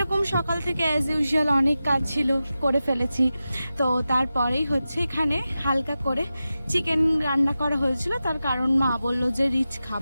সকাল থেকে অ্যাজ ইউজুয়াল অনেক কাজ ছিল, করে ফেলেছি। তো তারপরেই হচ্ছে এখানে হালকা করে চিকেন রান্না করা হয়েছিল। তার কারণ মা বললো যে রিচ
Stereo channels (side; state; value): both; inverted; correlation -0.93